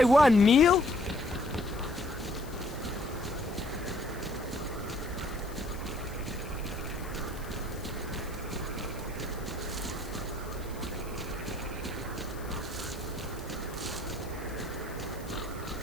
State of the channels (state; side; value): noise; left; hiss, 19 dB below the sound